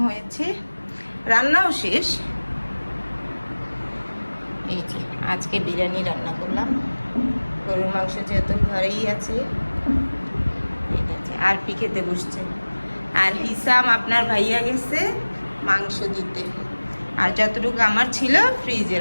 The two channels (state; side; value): inverted; both; correlation -1.00